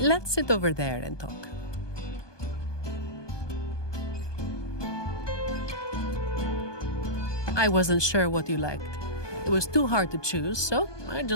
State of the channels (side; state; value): right; late; 1.2 ms